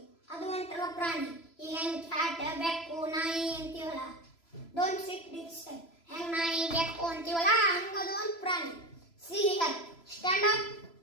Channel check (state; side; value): late; right; 3.0 ms